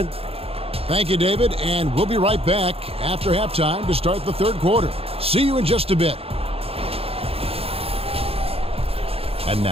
Thank you, David, and we'll be right back after halftime to start the third quarter. See you in just a bit. And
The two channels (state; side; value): late; left; 0.28 ms